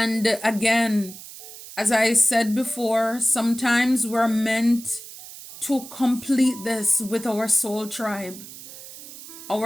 again, as I said before, sometimes we're meant to complete this with our soul tribe,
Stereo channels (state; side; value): noise; right; hiss, 15 dB below the sound